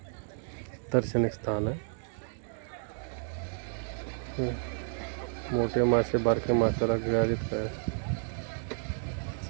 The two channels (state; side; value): silent; left; 57 dB below the other